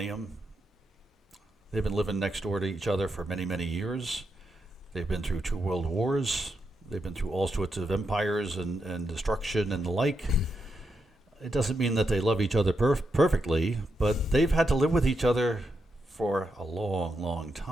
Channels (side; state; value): both; normal; correlation 0.84